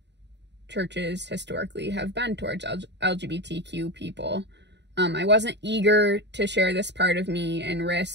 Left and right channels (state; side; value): late; left; 0.50 ms